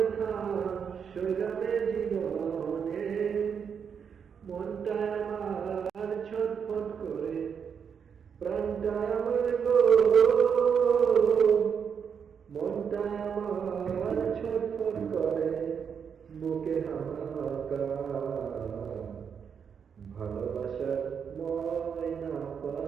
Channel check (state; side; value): quieter; left; 7.0 dB